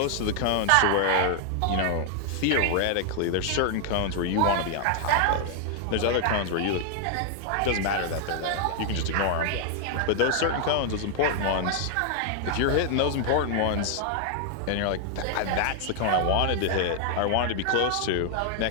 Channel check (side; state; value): both; different; correlation 0.00